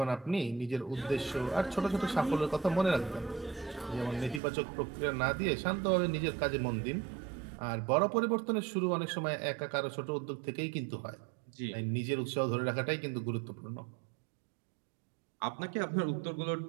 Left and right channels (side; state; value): left; drops out; at 4.4 s